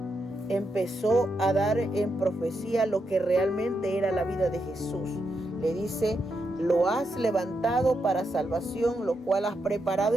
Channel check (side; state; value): both; normal; correlation 0.83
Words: empezó a dar en profecía lo que realmente era la vida de Jesús. Le dice, lo has levantado para salvación, lo cual has